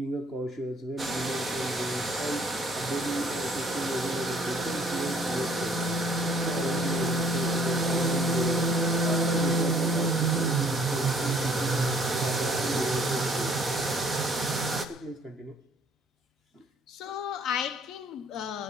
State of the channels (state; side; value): normal; both; correlation 0.59